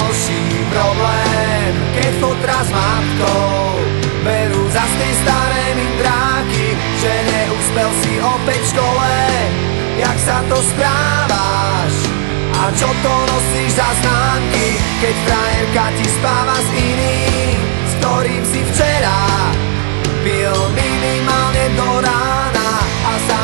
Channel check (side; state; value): left; silent; 71 dB below the other